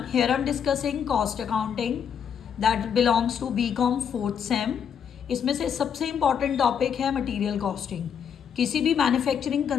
here I'm discussing cost accounting that belongs to BCom 4th same. इसमें से सबसे important topic है material costing. किसी भी मैन्युफैक्चरिंग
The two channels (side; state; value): right; quieter; 7.8 dB